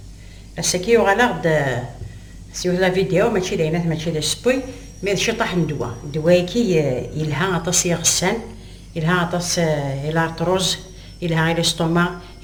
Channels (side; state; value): both; identical; correlation 1.00